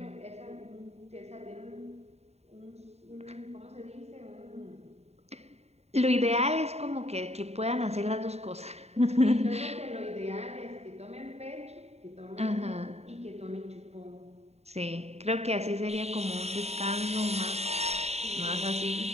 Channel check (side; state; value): left; late; 0.31 ms